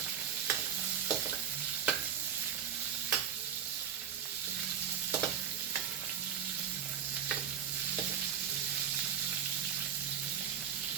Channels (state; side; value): quieter; left; 8.5 dB